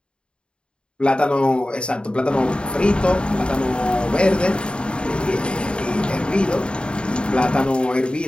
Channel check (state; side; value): late; right; 0.053 ms